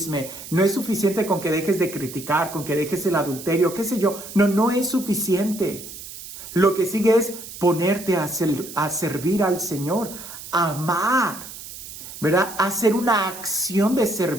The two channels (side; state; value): right; noise; hiss, 13 dB below the sound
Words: no es suficiente con que dejes de criticar, con que dejes el adulterio, qué sé yo. No es suficiente. Lo que sigue es ponerte a servir al Señor, amar, ¿verdad? Hacer una acción de